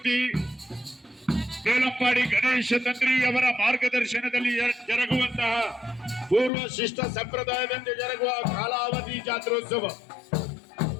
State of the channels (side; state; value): right; drops out; at 6.5 s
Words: ಬೇಲಂಪಾಡಿ ಗಣೇಶ ತಂತ್ರಿ ಅವರ ಮಾರ್ಗದರ್ಶನದಲ್ಲಿ ಜರುಗುವಂತಹ ಪೂರ್ವ ಶಿಷ್ಟ ಸಂಪ್ರದಾಯದಂತೆ ಜರುಗುವ ಕಾಲಾವಧಿ ಜಾತ್ರೋತ್ಸವ